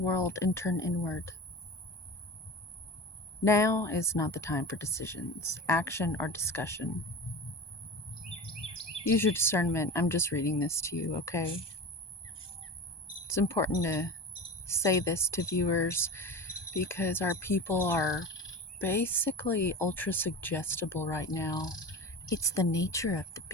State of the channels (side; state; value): right; late; 1.2 ms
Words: and turn inward. Now is not the time for decisions, action, or discussion. Use your discernment. I'm just reading this to you, okay? It's important to say this to viewers because our people are basically ultra suggestible right now. It's the nature of the